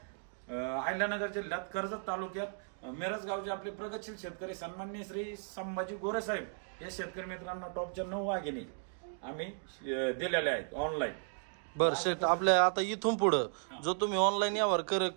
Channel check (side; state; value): left; silent; digital silence